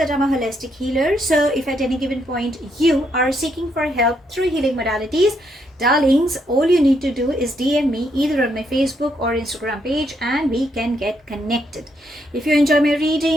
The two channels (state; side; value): normal; both; correlation 0.75